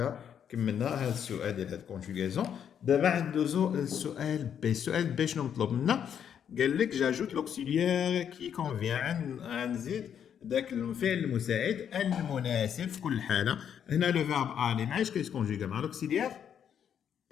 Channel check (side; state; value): right; quieter; 8.6 dB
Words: كملنا هذا السؤال ديال هاد الكونجوغاسيون. دابا ندوزو للسؤال بي. السؤال بي شنو مطلوب منا؟ قال لك جاجوت لوكسيليير كي كونفيان. غنزيد داك الفعل المساعد المناسب في كل حاله. هنا لو فيرب الي معايش كيتكونجوغا مع لوكسيليير